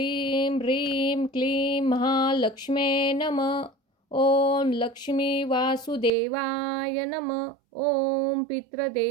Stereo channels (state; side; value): drops out; left; at 6.1 s